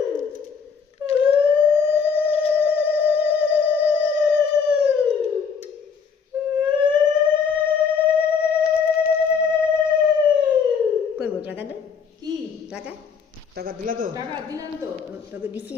করবো টাকা দে কি টাকা টাকা দিলা তো? টাকা দিলাম তো। তোকে দিছি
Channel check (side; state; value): right; quieter; 6.1 dB